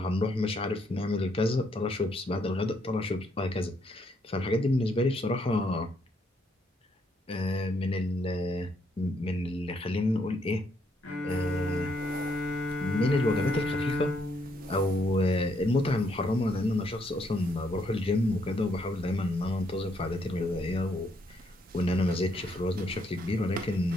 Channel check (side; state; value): both; normal; correlation 0.73